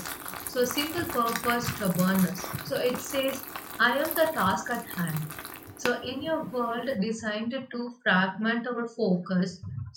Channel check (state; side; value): identical; both; correlation 1.00